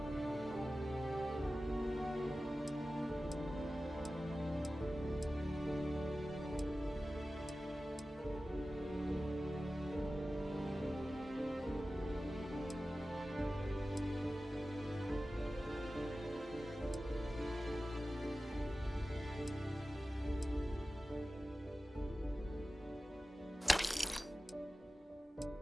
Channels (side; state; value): both; normal; correlation 0.95